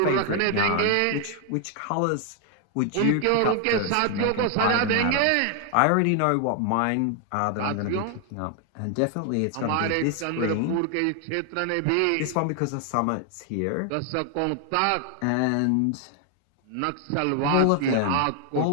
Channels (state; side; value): different; both; correlation 0.00